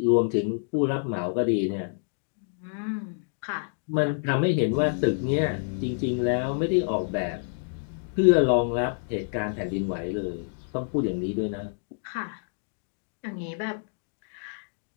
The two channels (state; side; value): silent; right; digital silence